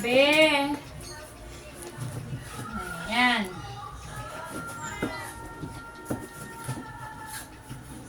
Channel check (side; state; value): both; identical; correlation 1.00